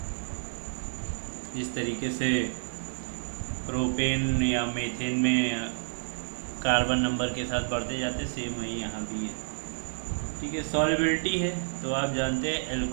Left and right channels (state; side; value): silent; left; digital silence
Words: इस तरीके से प्रोपेन या मीथेन में कार्बन नंबर के साथ बढ़ते जाते, सेम वही यहाँ भी है, ठीक है। सॉल्युबिलिटी है तो आप जानते हैं